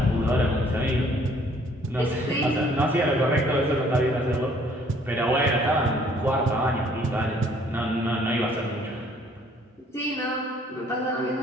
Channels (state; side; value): normal; both; correlation 0.60